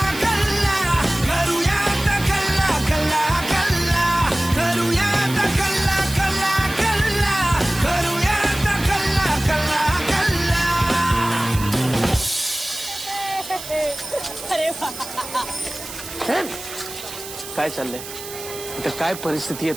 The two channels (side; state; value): right; noise; hiss, 12 dB below the sound